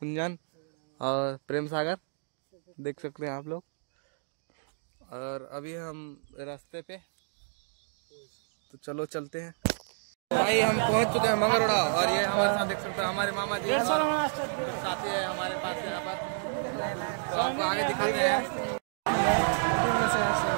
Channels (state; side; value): silent; left; digital silence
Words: और प्रेम सागर, देख सकते हैं आप लोग। और अभी हम रास्ते पे, तो चलो चलते हैं। भाई हम पहुंच चुके हैं मंगरोड़ा और ये हमारे साथ देख सकते हैं हमारे मामा जी साथी है हमारे पास यहाँ पर। तो आपको आगे दिखाते हैं।